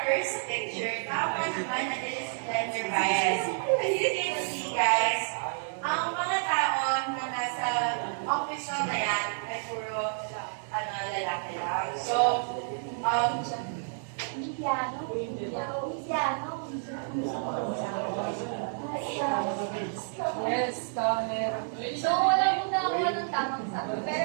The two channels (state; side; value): silent; left; digital silence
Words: first picture, dapat naman na this is gender bias. As you can see, guys, ang mga tao na nasa office na yan ay puro lalaki lang. So, Yes, camera. So, wala mo na ako ng tamang sagot.